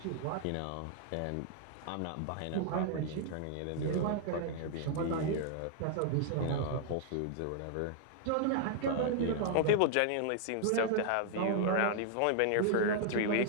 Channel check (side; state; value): both; different; correlation 0.00